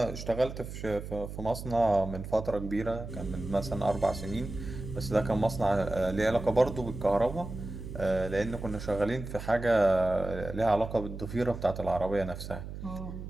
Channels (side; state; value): right; noise; hum, 9 dB below the sound